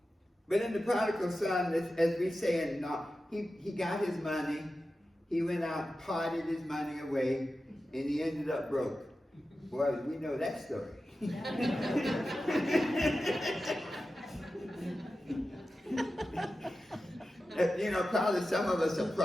But in the prodigal son, as we say, he got his money, he went out and parted his money away, and he ended up broke. Boy, we know that story. Probably some of us are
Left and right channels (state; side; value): normal; both; correlation 0.93